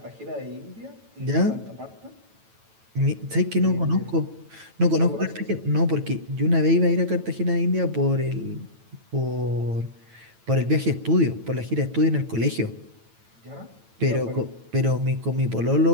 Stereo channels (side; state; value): left; late; 9.0 ms